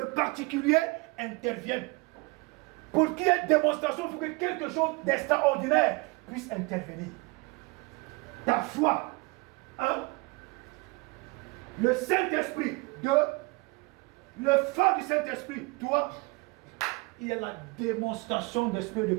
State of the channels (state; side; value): quieter; left; 26.7 dB